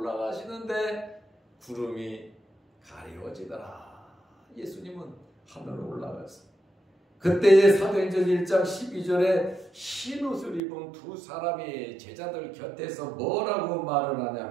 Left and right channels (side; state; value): left; drops out; at 10.6 s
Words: 구름이 가려지더라. 예수님은 하늘로 올라갔어요. 그때의 사도행전 1장 12절에 흰 옷을 입은 두 사람이 제자들 곁에서 뭐라고 말을